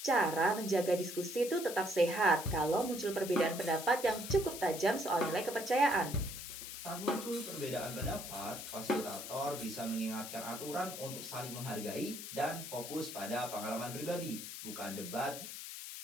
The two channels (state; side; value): noise; left; hiss, 9 dB below the sound